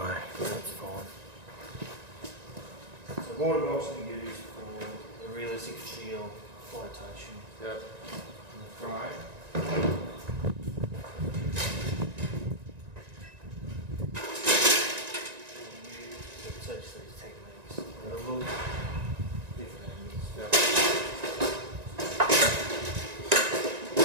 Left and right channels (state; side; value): late; left; 1.9 ms